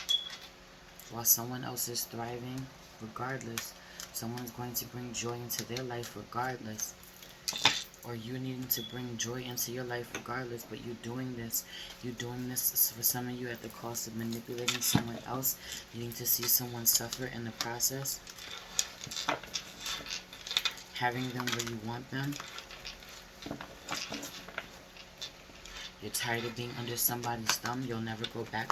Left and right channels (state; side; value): identical; both; correlation 1.00